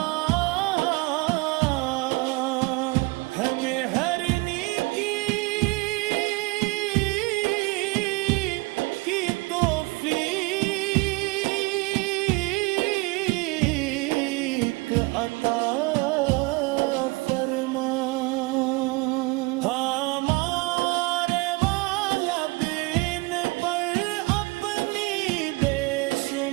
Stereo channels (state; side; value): quieter; left; 25.2 dB